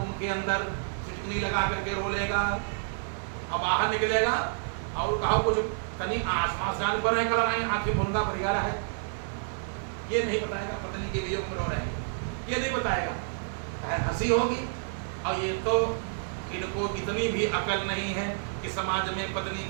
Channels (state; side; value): silent; left; digital silence